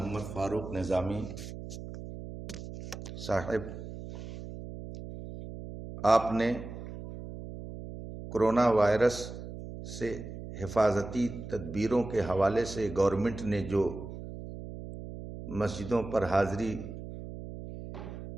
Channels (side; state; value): right; noise; hum, 10 dB below the sound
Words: فاروق نظامی صاحب، آپ نے کرونا وائرس سے حفاظتی تدبیروں کے حوالے سے گورنمنٹ نے جو مسجدوں پر حاضری